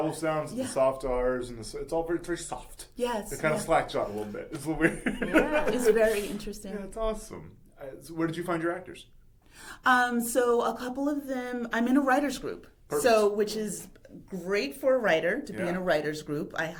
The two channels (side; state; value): both; identical; correlation 1.00